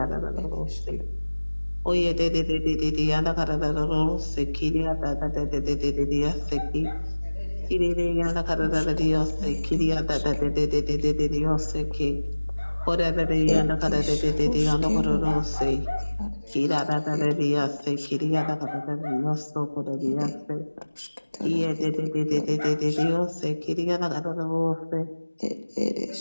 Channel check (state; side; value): inverted; both; correlation -1.00